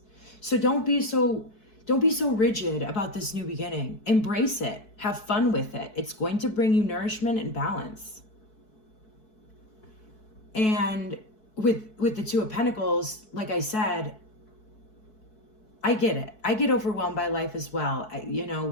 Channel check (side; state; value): right; late; 4.6 ms